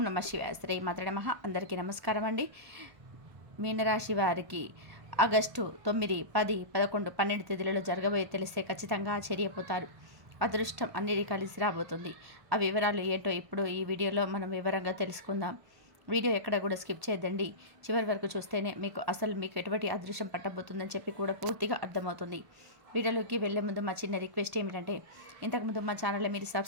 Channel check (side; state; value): left; late; 1.0 ms